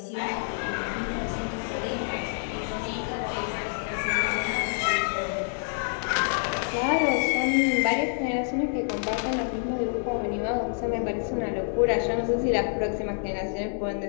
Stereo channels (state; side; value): silent; right; digital silence